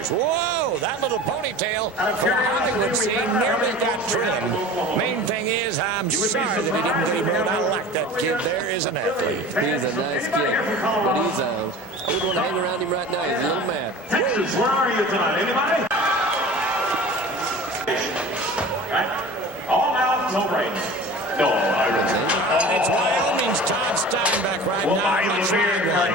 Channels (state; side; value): normal; both; correlation 0.39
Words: Whoa, that little ponytail for the Hollywood scene nearly got trimmed. Main thing is, I'm sorry that he didn't get him out. I like that kid. There is an athlete. He's a nice kid, but I wouldn't want to hang around him right now. He's a little mad. Texas, where are you tonight? Anybody? Right? All out, no break. No, It's Wyoming's Todd Steinbeck right well, now. I live here